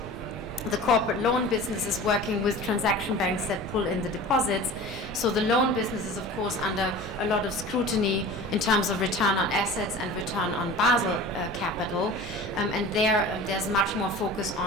the corporate loan business is working with transaction banks that pull in the deposits. So the loan business is, of course, under a lot of scrutiny in terms of return on assets and return on Basel capital. And there's much more focus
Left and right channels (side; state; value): both; normal; correlation 0.38